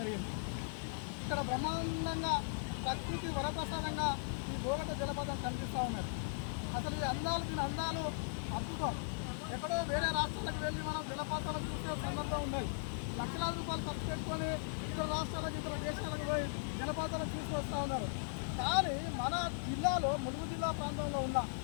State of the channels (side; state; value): right; silent; digital silence